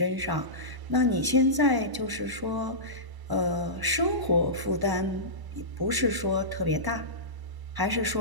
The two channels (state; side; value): late; left; 1.0 ms